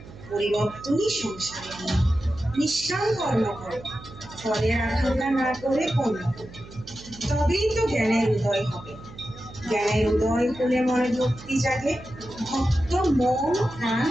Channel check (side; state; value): right; noise; hum, 17 dB below the sound